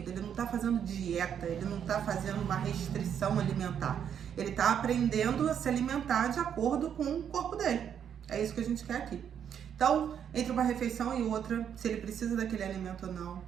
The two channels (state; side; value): quieter; left; 8.5 dB